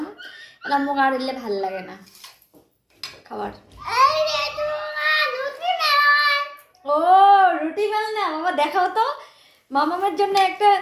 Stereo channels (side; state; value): both; identical; correlation 1.00